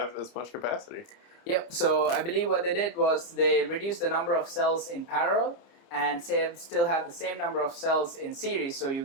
as much capacity. Yep, so I believe what they did was they reduced the number of cells in parallel and still have the same number of cells in series, so you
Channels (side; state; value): right; late; 29 ms